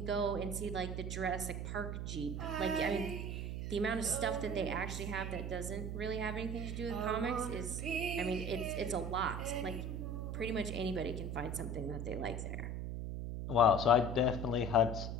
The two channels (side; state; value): right; noise; hum, 3 dB below the sound